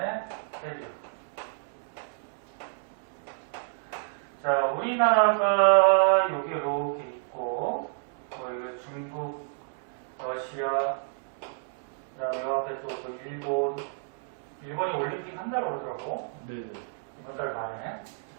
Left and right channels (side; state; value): left; silent; digital silence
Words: 해류. 자, 우리나라가 여기 이렇게 있고, 뭐 이거 중국, 러시아, 그다음에 요 앞에 또 일본이 올림픽 한다고 그러더라고. 네네. 이번 달 말에.